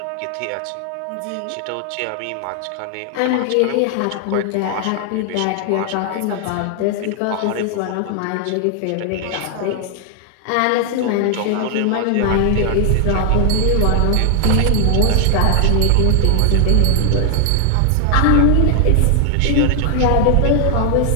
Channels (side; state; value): both; different; correlation 0.00